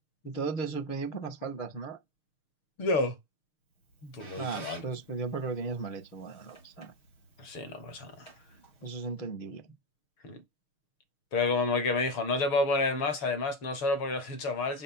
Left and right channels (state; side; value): late; right; 6.5 ms